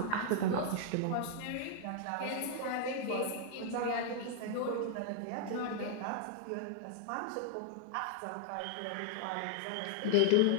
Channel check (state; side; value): different; both; correlation -0.01